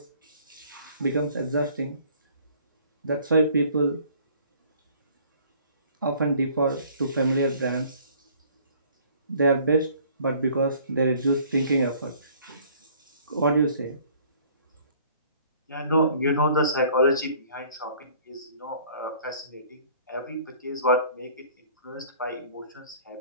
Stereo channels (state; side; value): inverted; both; correlation -0.55